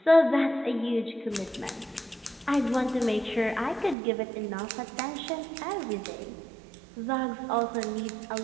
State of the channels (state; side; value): drops out; left; at 4.0 s